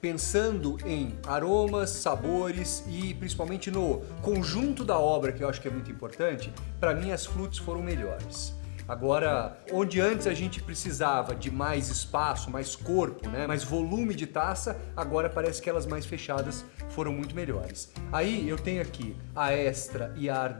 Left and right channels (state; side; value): silent; right; 56 dB below the other